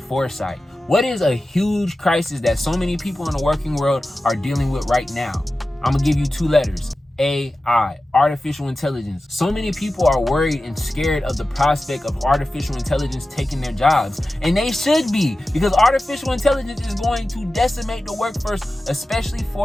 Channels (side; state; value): both; normal; correlation 0.94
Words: foresight. What is a huge crisis that so many people in the working world are dealing with right now? I'm gonna give you 2 letters. AI, artificial intelligence. So many people are worried and scared of the prospect of artificial intelligence taking their jobs. And they should be, because artificial intelligence is going to decimate the workforce, especially